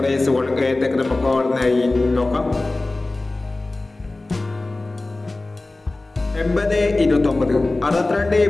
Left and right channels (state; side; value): quieter; right; 3.0 dB